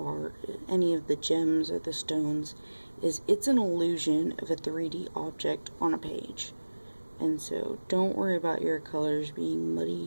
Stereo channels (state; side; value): inverted; both; correlation -1.00